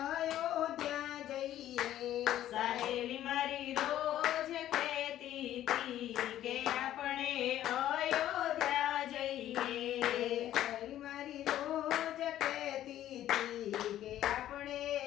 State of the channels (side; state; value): right; quieter; 12.5 dB